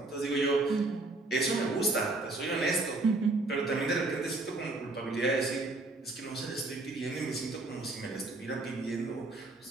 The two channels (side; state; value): left; quieter; 3.1 dB